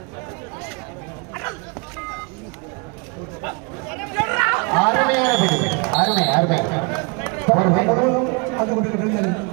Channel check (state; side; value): quieter; left; 31.1 dB